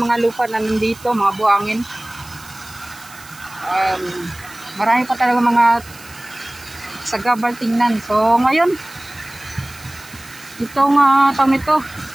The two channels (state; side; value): noise; right; hiss, 20 dB below the sound